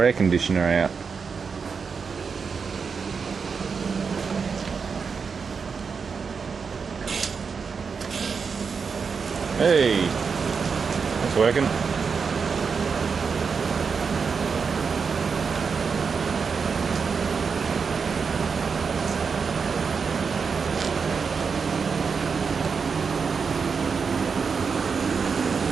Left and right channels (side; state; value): left; quieter; 5.6 dB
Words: air conditioner out. Hey, it's working.